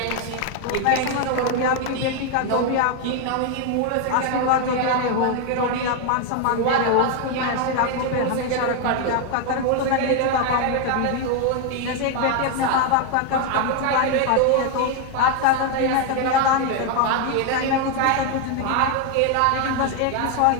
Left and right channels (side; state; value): both; different; correlation 0.01